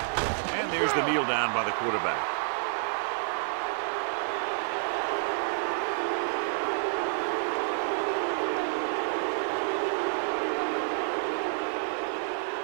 And there's the kneel down by the quarterback.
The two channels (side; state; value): left; silent; 58 dB below the other